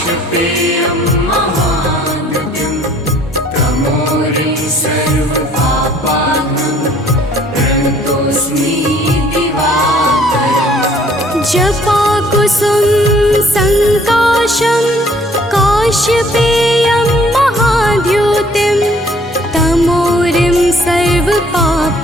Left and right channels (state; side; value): normal; both; correlation 0.59